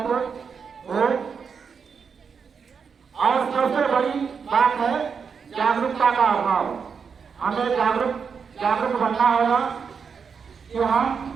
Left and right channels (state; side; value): quieter; left; 6.1 dB